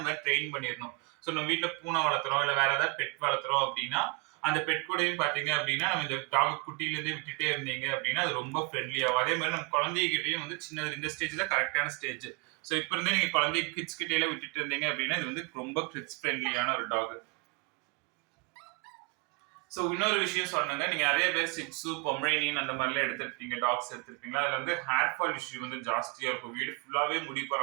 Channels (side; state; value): left; quieter; 29.8 dB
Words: ட்ரெயின் பண்ணிடணும். ஸோ நம்ம வீட்டுல பூனை வளர்த்துறோம் இல்ல வேற ஏதாவது பெட் வளர்த்துறோம் அப்படின்னா அந்த பெட் கூடயும் பாத்தீங்க அப்படின்னா நம்ம இந்த டாக் குட்டியில இருந்தே விட்டுட்டே இருந்தீங்க அப்படின்னா அது ரொம்ப ஃப்ரெண்ட்லி ஆகும். அதே மாதிரி நம்ம குழந்தைகிட்டையும் வந்து சின்னது இந்த ஸ்டேஜ்ல கரெக்டான ஸ்டேஜ். ஸோ இப்ப இருந்தே நீங்க குழந்தை கிட்ஸ் கிட்டே விட்டுட்டு இருந்தீங்க அப்படின்னா இது வந்து ரொம்ப கிட்ஸ் ஃப்ரெண்ட்லியான ஒரு டாக். ஸோ இன்னொரு விஷயம் சொன்னாங்க, நீங்க நிறைய பேர் சிட்ஸு பொமரேனியன் அந்த மாதிரிலாம் எடுத்துருப்பீங்க, டாக்ஸ் எடுத்துருப்பீங்களா. அதுல வந்து ஹேர் ஃபால் இஷ்யூ வந்து ஜாஸ்தியா இருக்கும். வீடு ஃபுல்லாவே முடி